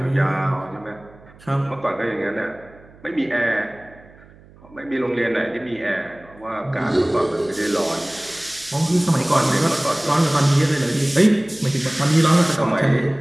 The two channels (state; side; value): noise; right; hum, 24 dB below the sound